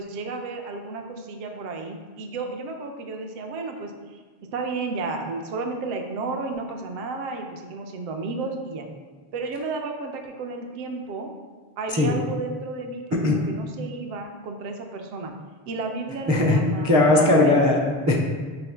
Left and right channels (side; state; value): left; late; 6.7 ms